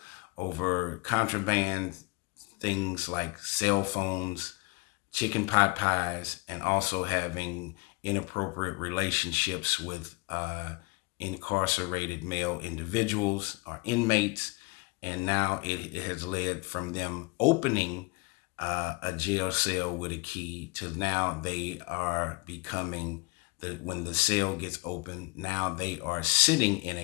over contraband things like cell phones, chicken pot pies, and also having inappropriate relationships with incarcerated male individuals or inmates. And now it has led from them opening a jail cell with a key to now they are becoming, when the cell gets open, now they are sitting in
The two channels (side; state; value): right; quieter; 27.1 dB